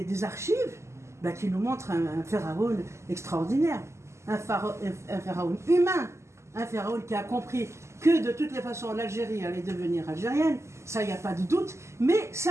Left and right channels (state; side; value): late; left; 0.13 ms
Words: archives qui nous montrent un pharaon extraordinaire, un pharaon humain, un pharaon qui a compris que de toutes les façons l'Algérie allait devenir algérienne, ça il n'y a pas de doute, mais